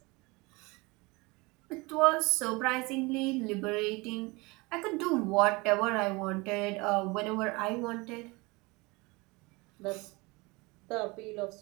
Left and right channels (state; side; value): quieter; left; 25.0 dB